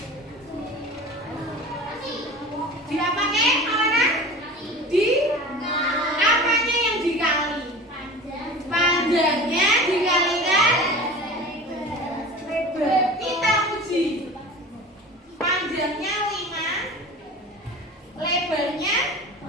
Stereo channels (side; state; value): both; normal; correlation 0.36